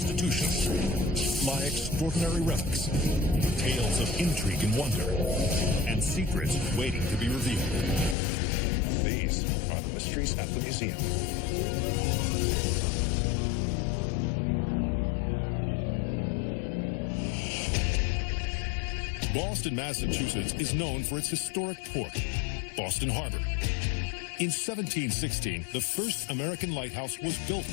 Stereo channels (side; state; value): right; drops out; at 8.2 s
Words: lie extraordinary relics, tales of intrigue and wonder, and secrets waiting to be revealed. These are the mysteries at the museum. Boston, Massachusetts is known for its historic port, Boston Harbor. In 1716, the first American lighthouse was built